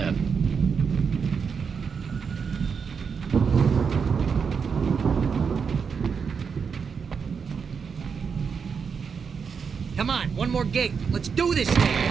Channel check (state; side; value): quieter; left; 6.1 dB